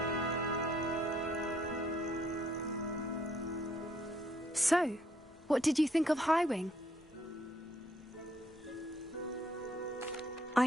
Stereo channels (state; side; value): normal; both; correlation 0.69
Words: So, what did you think of Highwing?